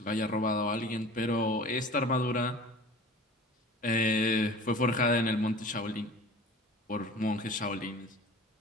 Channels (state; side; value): normal; both; correlation 0.41